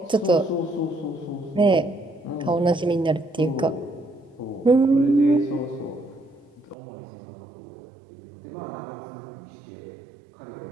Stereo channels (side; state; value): left; drops out; at 6.8 s